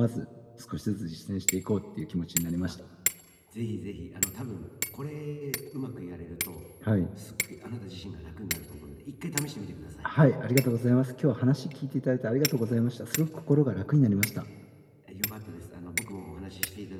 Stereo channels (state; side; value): identical; both; correlation 1.00